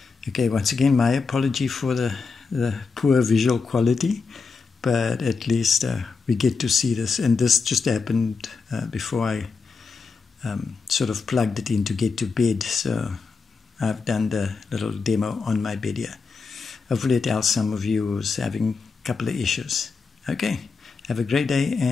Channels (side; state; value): right; quieter; 4.8 dB